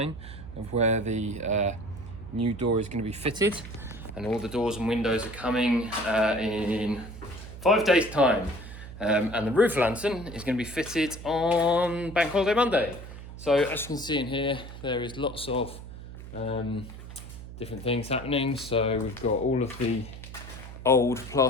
of where the new door is going to be fitted, and all the doors and windows are coming in 5 days time, and the roof lantern is going to be fitted on Bank Holiday Monday. So as you can see in here, there is lots of different things happening. So we've got all of the old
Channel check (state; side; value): noise; right; hum, 13 dB below the sound